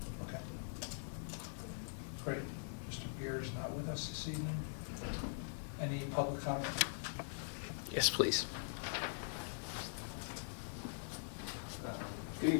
Okay. Great. Mr. Beer is not with us this evening. Any public comment? Yes, please. Good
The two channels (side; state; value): right; silent; digital silence